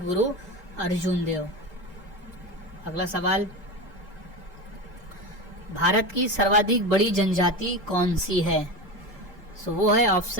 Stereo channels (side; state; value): both; normal; correlation 0.23